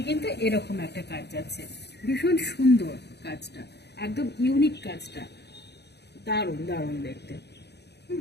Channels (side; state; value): right; late; 0.49 ms